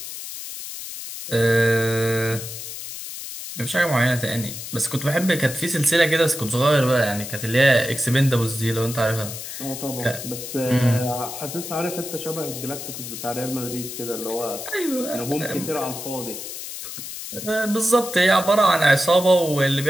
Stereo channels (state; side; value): noise; left; hiss, 9 dB below the sound